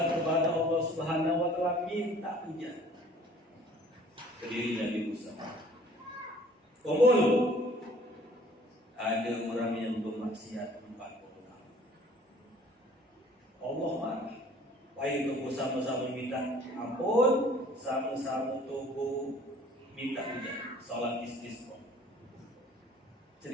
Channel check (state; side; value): normal; both; correlation 0.53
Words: kepada Allah Subhanahu wa Ta'ala, minta hujan. Ke diri Nabi Musa. Kumpul. Ada orang yang bermaksiat 40 tahun. Allah marah. Baik tubuh sama-sama minta ampun, sama-sama tubuh minta hujan. Salat istisqa.